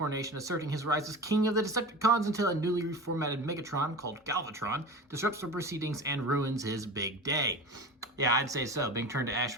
asserting his rise as king of the Decepticons until a newly reformatted Megatron called Galvatron disrupts the proceedings and ruins his big day. Yeah, I'd say so. Being turned to ash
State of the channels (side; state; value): both; normal; correlation 0.32